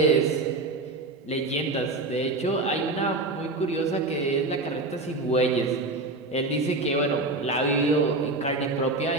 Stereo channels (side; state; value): left; quieter; 3.1 dB